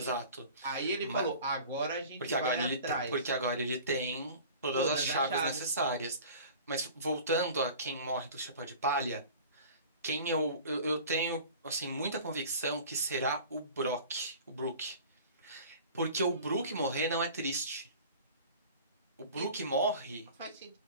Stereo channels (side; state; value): both; inverted; correlation -0.42